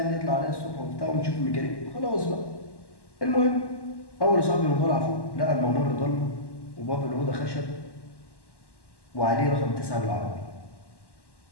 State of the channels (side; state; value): right; late; 1.1 ms